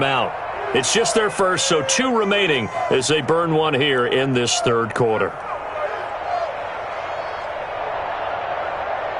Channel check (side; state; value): both; identical; correlation 1.00